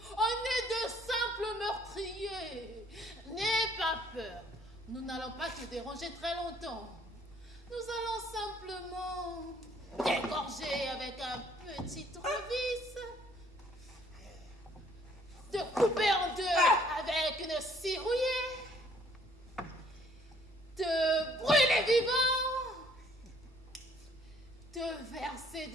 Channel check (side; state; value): both; normal; correlation 0.61